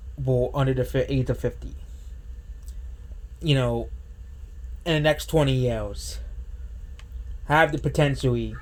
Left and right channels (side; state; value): both; identical; correlation 1.00